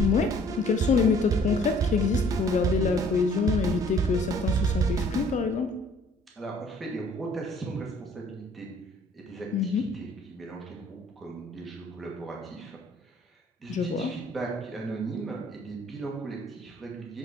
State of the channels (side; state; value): both; normal; correlation 0.57